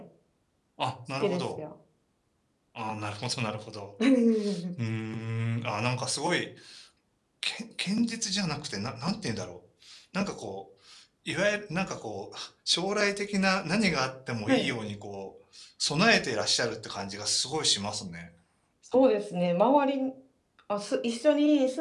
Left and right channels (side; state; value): both; identical; correlation 1.00